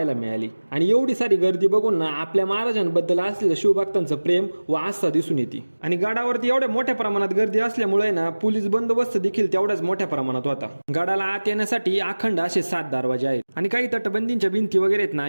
मिळाली आणि एवढी सारी गर्दी बघून ना आपल्या महाराजांबद्दल असलेलं शिवभक्तांचं प्रेम व आस्था दिसून येते. आणि गडावरती एवढ्या मोठ्या प्रमाणात गर्दी असल्यामुळे ना पोलीस बंदोबस्त देखील तेवढ्याच मोठ्या प्रमाणात होता. गडाला आत येण्यासाठी अखंड असे 7 दरवाजे आहेत आणि काही तटबंदींच्या भिंती वगैरे आहेत ना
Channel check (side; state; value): both; inverted; correlation -1.00